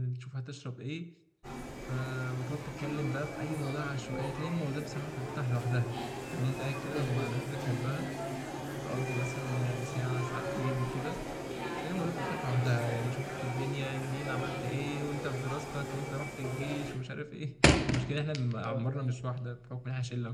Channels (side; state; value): both; identical; correlation 1.00